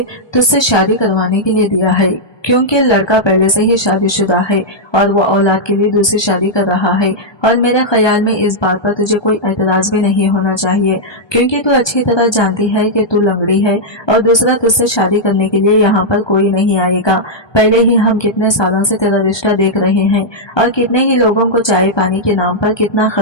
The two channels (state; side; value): late; right; 1.2 ms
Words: तुझसे शादी करवाने के लिए दिया है, क्योंकि लड़का पहले से ही शादीशुदा है और वो औलाद के लिए दूसरी शादी कर रहा है। और मेरे ख्याल में इस बात पर तुझे कोई एतराज भी नहीं होना चाहिए, क्योंकि तू अच्छी तरह जानती है कि तू लंगड़ी है और दूसरा तुझसे शादी करने के लिए यहाँ पर कोई नहीं आएगा। पहले ही हम कितने सालों से तेरा रिश्ता देख रहे हैं और कितने ही लोगों को चाय पानी के नाम पर कितना